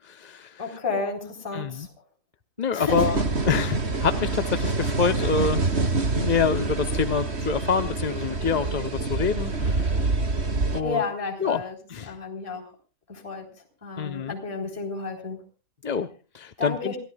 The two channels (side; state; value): left; late; 3.1 ms